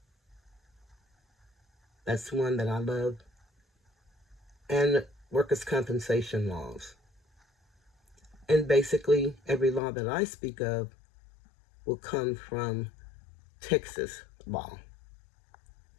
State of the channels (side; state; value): right; drops out; at 9.8 s